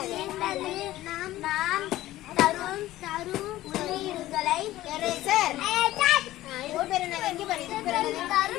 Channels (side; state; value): right; quieter; 15.5 dB